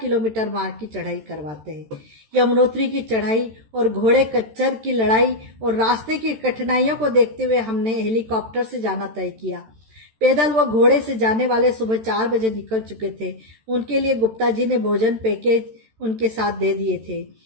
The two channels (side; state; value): left; late; 13 ms